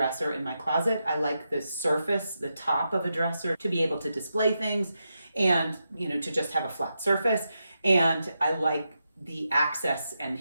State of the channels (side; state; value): both; inverted; correlation -0.86